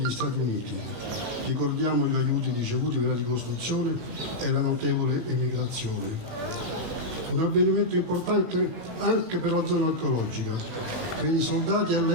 Stati Uniti. Ricordiamo gli aiuti ricevuti per la ricostruzione e la notevole emigrazione. Un avvenimento importante anche per la zona archeologica. Per i soldati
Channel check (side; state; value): left; late; 18 ms